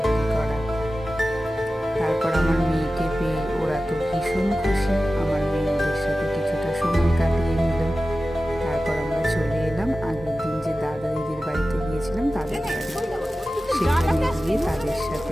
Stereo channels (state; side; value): normal; both; correlation 0.95